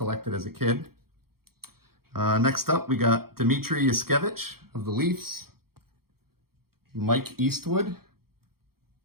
as a kid. Next up, we got Dmitry Yushkevich of the Leafs, Mike Eastwood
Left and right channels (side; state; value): left; late; 0.94 ms